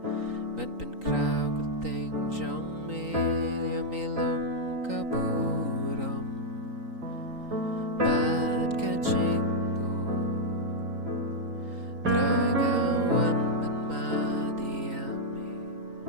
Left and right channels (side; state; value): left; late; 3.9 ms